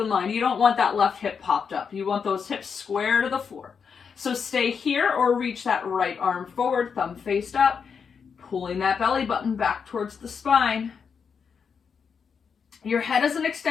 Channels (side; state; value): right; quieter; 6.3 dB